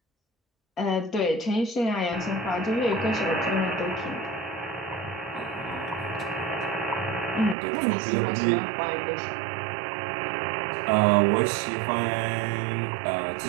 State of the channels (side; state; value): left; drops out; at 7.6 s